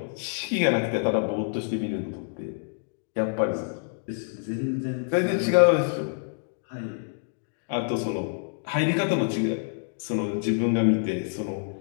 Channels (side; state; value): right; silent; digital silence